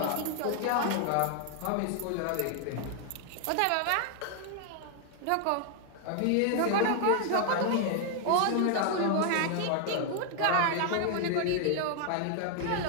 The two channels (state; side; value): different; both; correlation 0.00